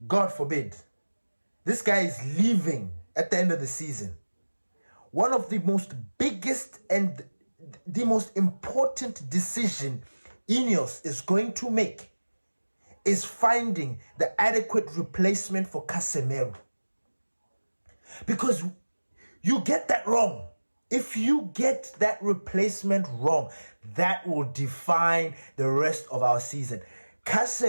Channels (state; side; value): inverted; both; correlation -1.00